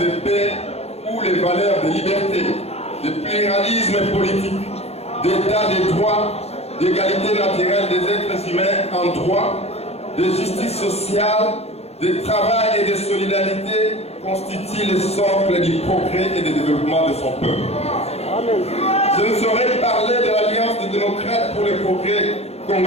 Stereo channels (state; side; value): late; right; 0.30 ms